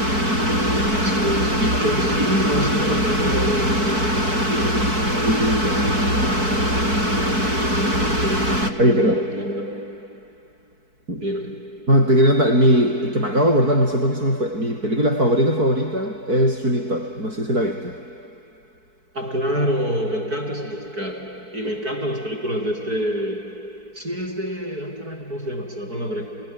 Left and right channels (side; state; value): left; late; 4.6 ms